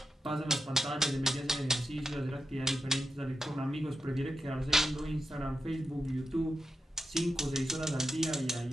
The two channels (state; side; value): normal; both; correlation 0.88